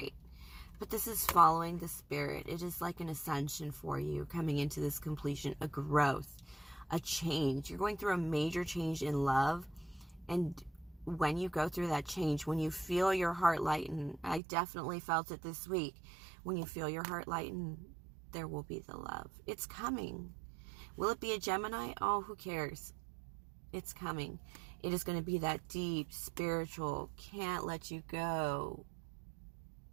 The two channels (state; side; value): drops out; left; at 14.4 s